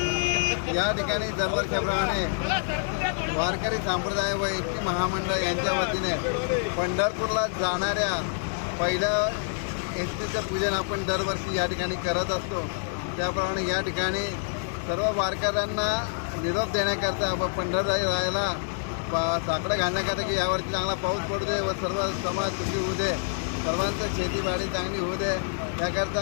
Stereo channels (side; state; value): right; silent; digital silence